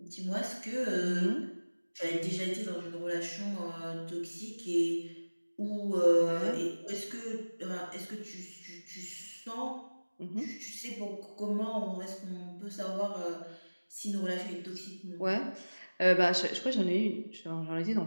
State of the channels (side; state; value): both; inverted; correlation -1.00